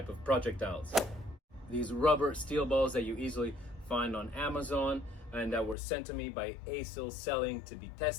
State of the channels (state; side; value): drops out; right; at 5.8 s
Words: of projectiles. These rubber steel balls that you easily find on Amazon and that were sent to me by ASIL Selling to be